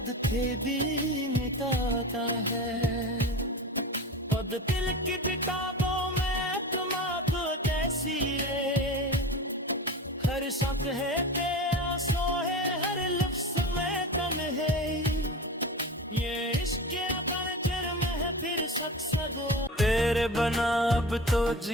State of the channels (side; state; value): both; normal; correlation 0.30